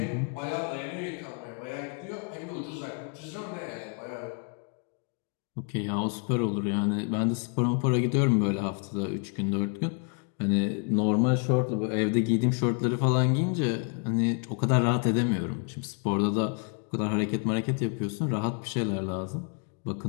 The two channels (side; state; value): right; quieter; 38.9 dB